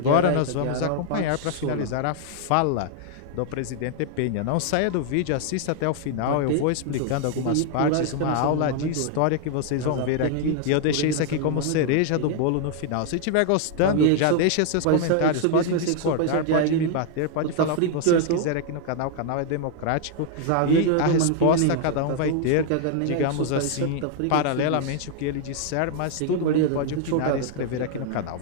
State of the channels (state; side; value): different; both; correlation 0.00